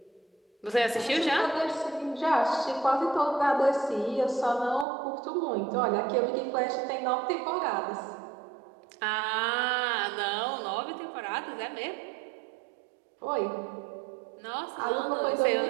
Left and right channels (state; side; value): drops out; left; at 4.9 s